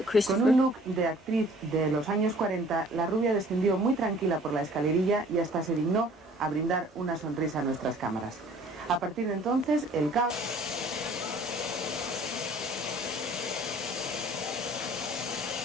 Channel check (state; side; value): normal; both; correlation 0.53